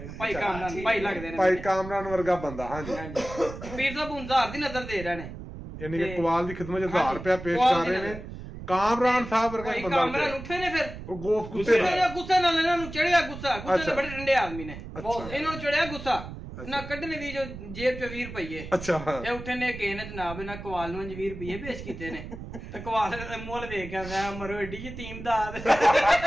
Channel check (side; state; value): right; noise; rumble, 11 dB below the sound